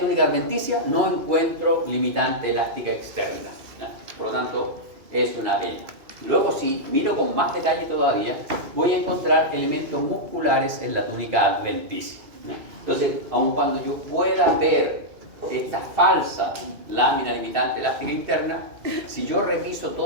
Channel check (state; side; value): late; left; 2.5 ms